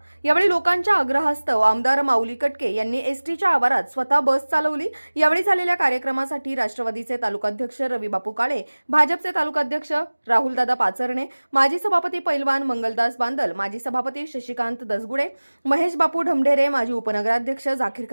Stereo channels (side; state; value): both; inverted; correlation -1.00